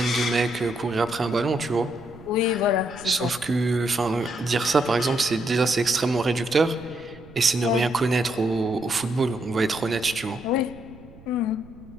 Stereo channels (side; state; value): right; noise; rumble, 21 dB below the sound